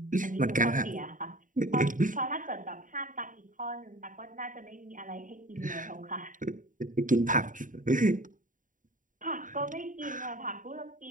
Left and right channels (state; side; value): late; left; 0.38 ms